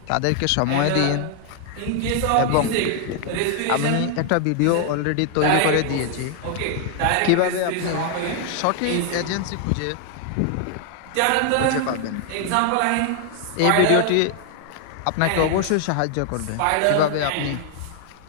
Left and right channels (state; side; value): different; both; correlation 0.00